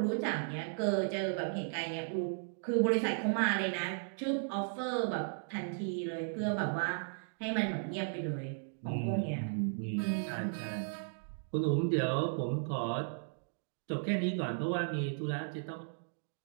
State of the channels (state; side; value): silent; left; digital silence